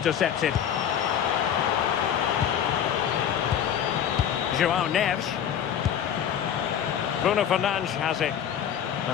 João Neves. Bruno Fernandes has it.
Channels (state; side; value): quieter; right; 9.2 dB